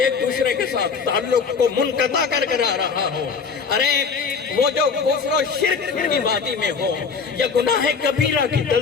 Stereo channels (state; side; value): quieter; right; 5.4 dB